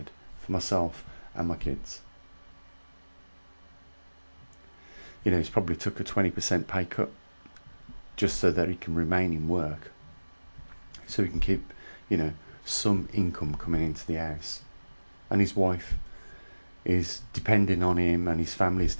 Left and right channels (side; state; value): both; inverted; correlation -1.00